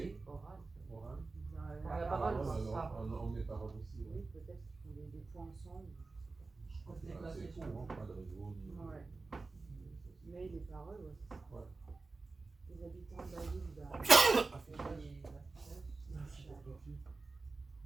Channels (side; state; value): left; quieter; 3.8 dB